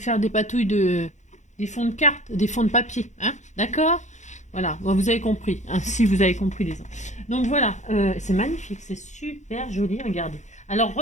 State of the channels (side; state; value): right; late; 0.34 ms